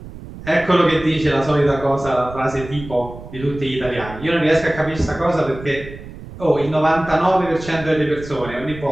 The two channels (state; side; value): noise; right; rumble, 14 dB below the sound